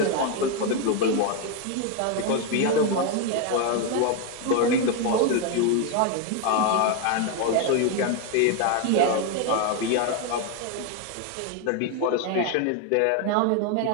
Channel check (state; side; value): different; both; correlation 0.01